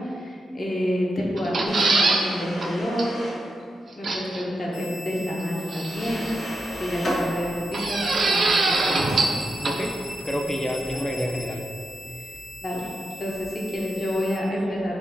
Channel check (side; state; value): both; normal; correlation 0.87